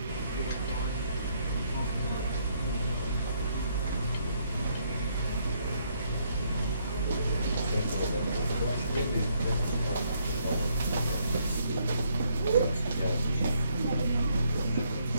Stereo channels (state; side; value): inverted; both; correlation -0.72